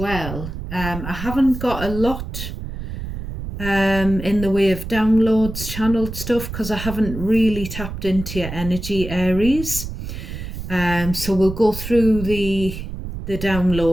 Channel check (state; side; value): noise; right; rumble, 8 dB below the sound